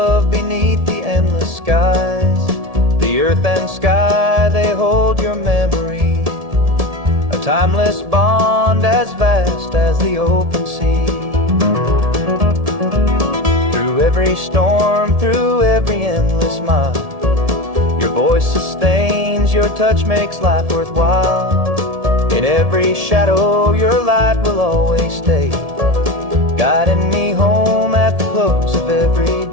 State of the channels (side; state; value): left; late; 1.7 ms